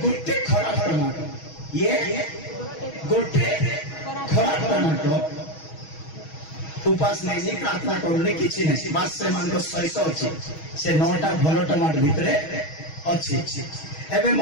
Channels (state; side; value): late; right; 6.3 ms